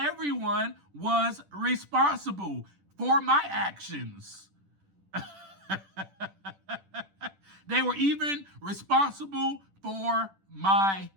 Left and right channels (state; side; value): late; left; 10 ms